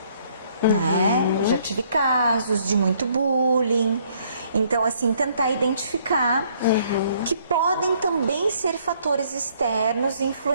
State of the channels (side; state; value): both; inverted; correlation -0.64